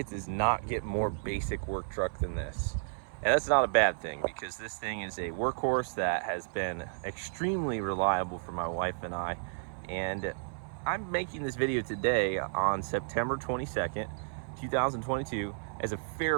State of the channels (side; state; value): left; silent; 56 dB below the other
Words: does not get more basic work truck than this. And that's not a bad thing, because this thing is a workhorse that has been extremely reliable for my wife and I. And I'm making this video today on September 22nd, 2022 as a